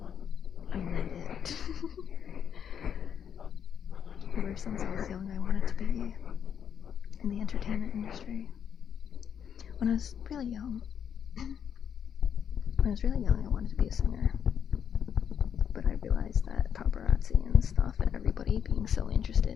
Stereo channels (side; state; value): right; quieter; 8.2 dB